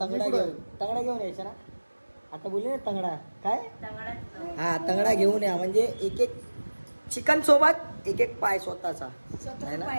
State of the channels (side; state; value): both; inverted; correlation -1.00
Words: तंगडा घेऊन यायचं ना. आता बोलले ना तंगडा. काय हा तंगडा घेऊन या. म्हणजे एक एक चिकन सोबत एक एक पाय स्वतःचा आहे ना.